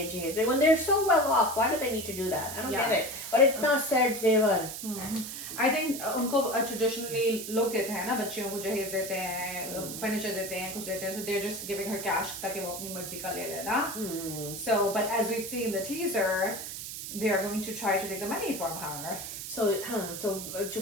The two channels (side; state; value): right; noise; hiss, 8 dB below the sound